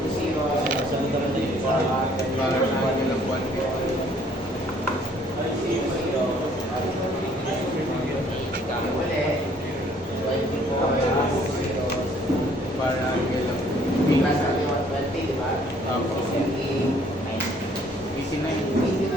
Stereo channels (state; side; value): normal; both; correlation 0.60